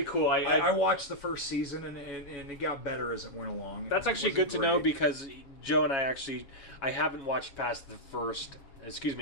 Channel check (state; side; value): late; right; 7.3 ms